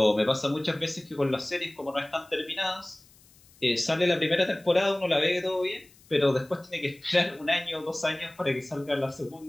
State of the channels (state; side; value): noise; left; hiss, 28 dB below the sound